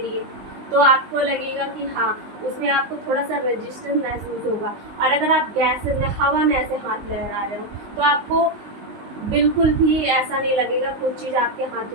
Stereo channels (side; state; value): left; late; 19 ms